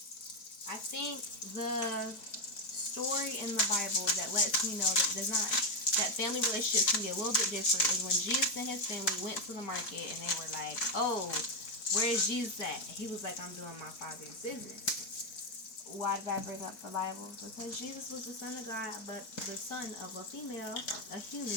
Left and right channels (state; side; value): late; right; 4.6 ms